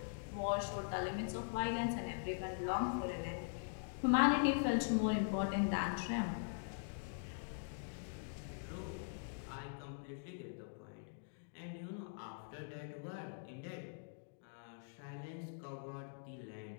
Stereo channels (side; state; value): right; silent; digital silence